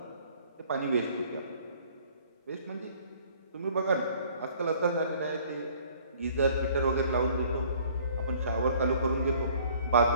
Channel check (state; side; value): inverted; both; correlation -0.56